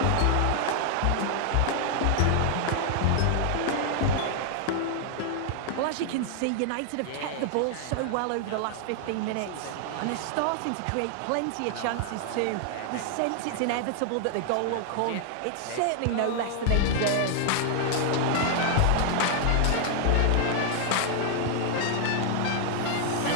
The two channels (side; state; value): both; different; correlation 0.00